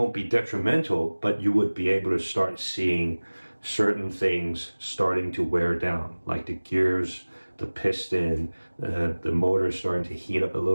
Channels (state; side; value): inverted; both; correlation -1.00